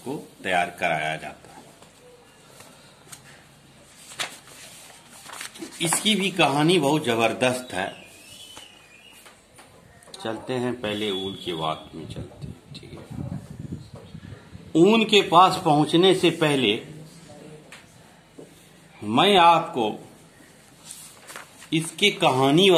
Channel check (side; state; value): both; identical; correlation 1.00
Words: तैयार कराया जाता है। इसकी भी कहानी बहुत जबरदस्त है। चलते हैं पहले ऊन की बात में चलते हैं। ठीक है, ऊन के पास पहुंचने से पहले मैं आपको इसकी कहानी